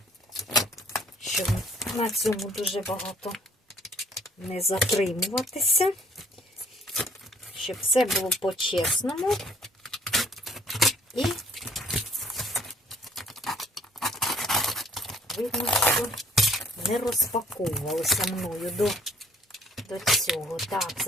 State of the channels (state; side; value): normal; both; correlation 0.59